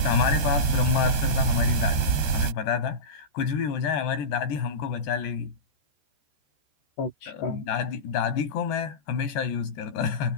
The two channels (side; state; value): right; late; 14 ms